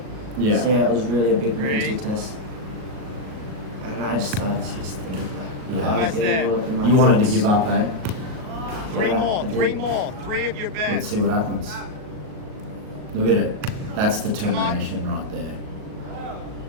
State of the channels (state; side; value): late; left; 38 ms